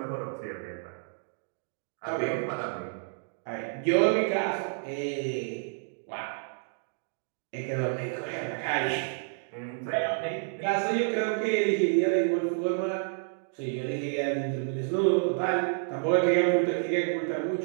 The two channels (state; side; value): silent; left; digital silence